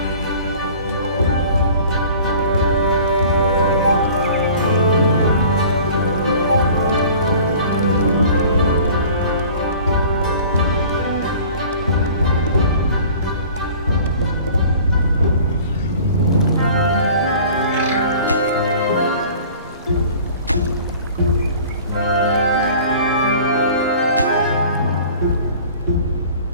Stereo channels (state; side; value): inverted; both; correlation -0.46